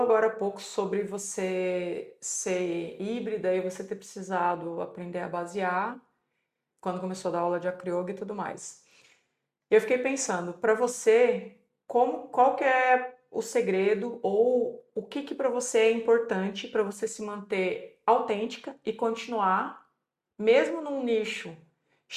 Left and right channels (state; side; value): identical; both; correlation 1.00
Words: agora há pouco sobre você ser híbrida e você ter precisado aprender a basear quando começou a dar aula de acroyoga e tudo mais. Eu fiquei pensando, para você, qual que é o segredo ou o que para você é importante para você se manter autêntica e continuar, mesmo num nicho